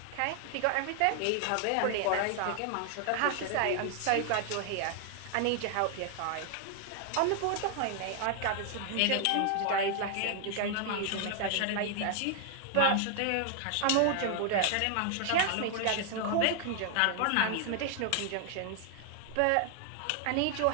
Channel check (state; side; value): different; both; correlation 0.00